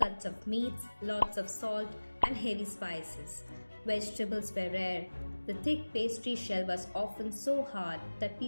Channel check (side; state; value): both; inverted; correlation -1.00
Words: of meats, lots of salt, and heavy spices. Vegetables were rare. The thick pastry shell was often so hard that